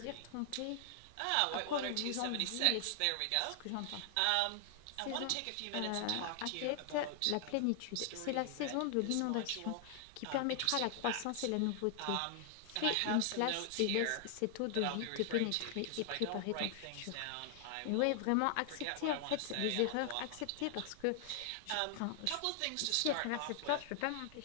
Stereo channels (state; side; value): different; both; correlation 0.00